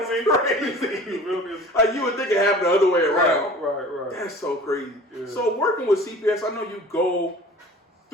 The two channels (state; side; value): normal; both; correlation 0.43